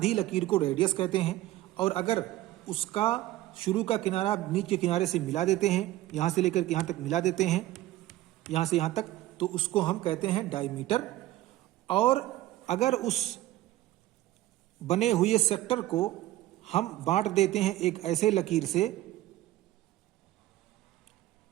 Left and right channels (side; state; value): left; quieter; 15.6 dB